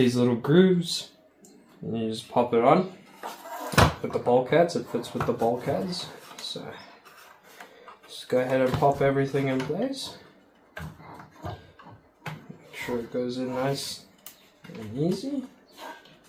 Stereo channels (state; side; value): identical; both; correlation 1.00